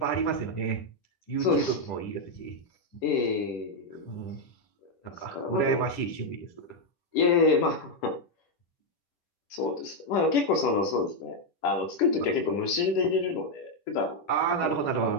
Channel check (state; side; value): late; right; 10 ms